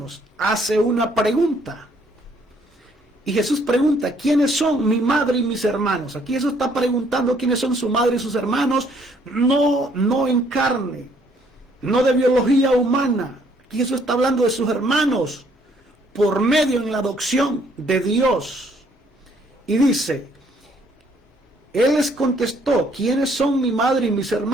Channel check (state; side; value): normal; both; correlation 0.65